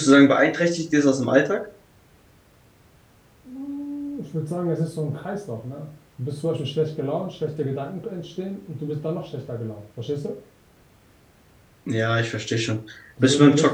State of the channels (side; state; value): both; identical; correlation 1.00